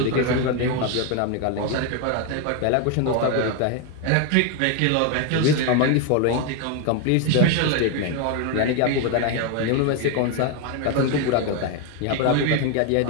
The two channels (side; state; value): both; different; correlation 0.01